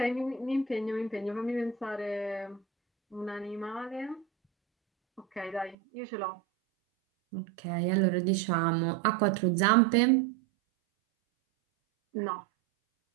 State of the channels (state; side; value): drops out; left; at 5.8 s